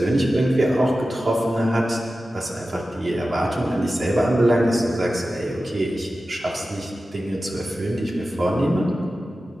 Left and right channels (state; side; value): normal; both; correlation 0.94